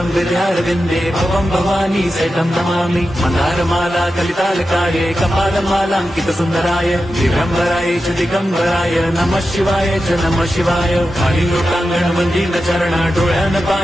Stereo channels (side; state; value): both; normal; correlation 0.91